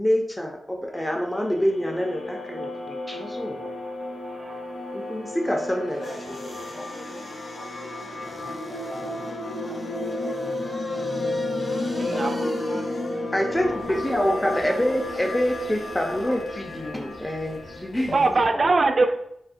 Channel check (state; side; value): normal; both; correlation 0.92